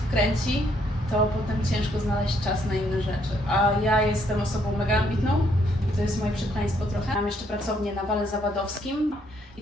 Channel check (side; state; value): both; normal; correlation 0.70